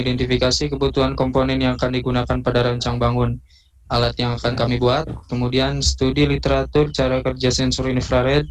kebutuhan komponen yang akan digunakan pada rancang bangun alat yang akan kami buat, kemudian studi literatur cara kerja sensor infrared,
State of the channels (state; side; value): identical; both; correlation 1.00